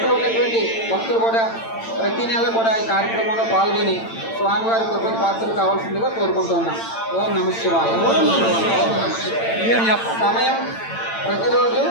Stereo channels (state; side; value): late; right; 8.9 ms